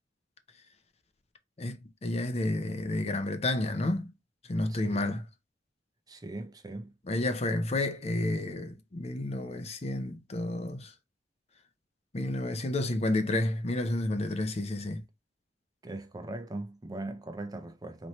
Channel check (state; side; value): normal; both; correlation 0.70